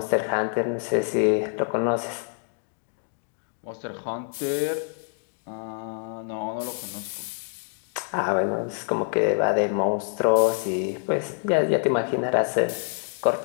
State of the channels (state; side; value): silent; right; 61 dB below the other